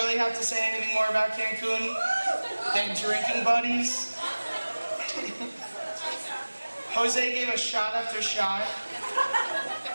have to say anything more about Cancun than drinking buddies? Jose gave us shot after shot.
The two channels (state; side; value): inverted; both; correlation -1.00